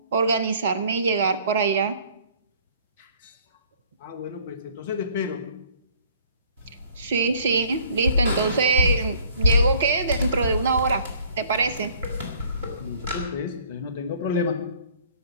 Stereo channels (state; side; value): inverted; both; correlation -0.56